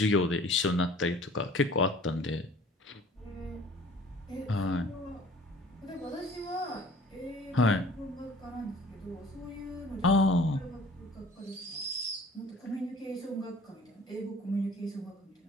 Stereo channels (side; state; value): both; normal; correlation 0.50